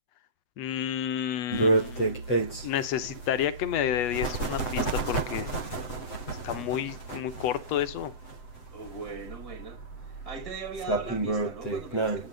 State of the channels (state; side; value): late; right; 7.8 ms